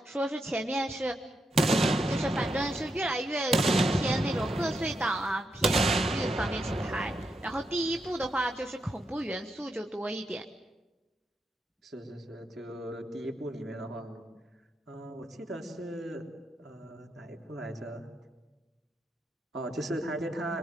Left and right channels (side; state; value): both; normal; correlation 0.83